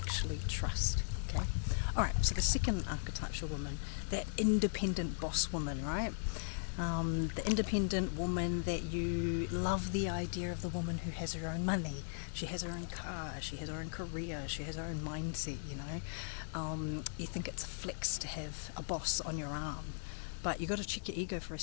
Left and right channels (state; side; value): silent; right; digital silence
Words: trust, okay? Alright, so the second archetypal woman, that independent boss woman, right? The independent woman that you love the idea of, the woman who has her own money. She has her own car, she has her own career, she has her own mindset, You think it's a flex to have a boss on your arm. But you got to check your ego for a